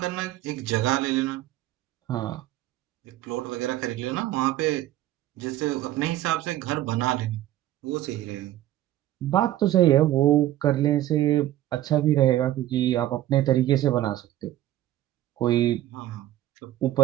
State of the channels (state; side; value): quieter; left; 14.0 dB